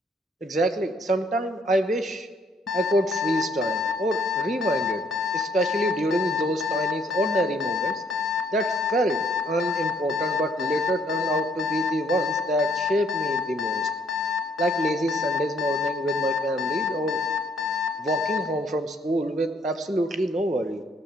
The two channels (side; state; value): both; normal; correlation 0.67